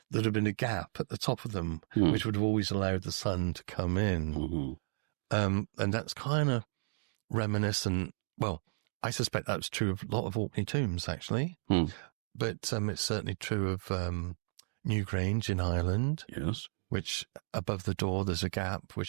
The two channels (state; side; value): silent; left; digital silence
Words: there'd have been a gap at the top of them, which would have always allowed the sun to come in. And that's kind of reminiscent. Well, I suspect that's true of a lot of Orkney tombs, actually. But it's certainly true of Newgrange in Ireland. Yes. Which above the door there's a gap